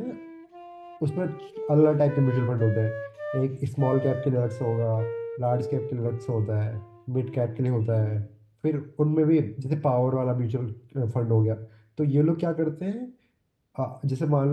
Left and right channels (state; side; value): identical; both; correlation 1.00